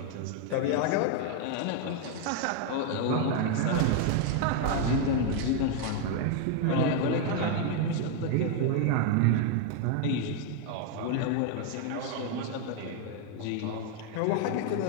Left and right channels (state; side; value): different; both; correlation 0.00